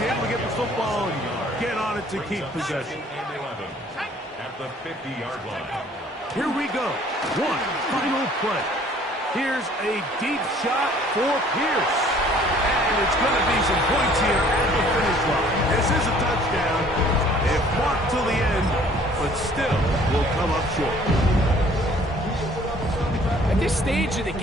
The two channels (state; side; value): normal; both; correlation 0.56